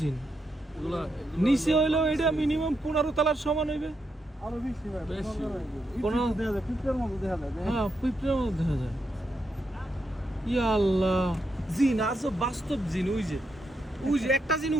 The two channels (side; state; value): both; normal; correlation 0.82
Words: নিচে হইলো এটা মিনিমাম 15 তলার সমান হইবে। আরো বেশি ভাই, বেশি। 15 দেখা যায়, পিঁপড়ার মতো দেখা যায়। হ্যাঁ, পিঁপড়ার মতো দেখা যায়। ইয়া আল্লাহ, জিন আজব বাস্তব জিন। ওই যে একটা জিন